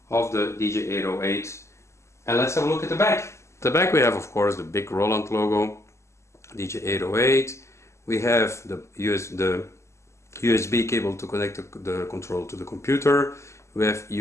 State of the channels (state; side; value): late; right; 0.13 ms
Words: of the DJ-808, and let's have a look at the back. The back we have, of course, the big Roland logo, DJ-808. We have the USB cable to connect the control to the computer. We have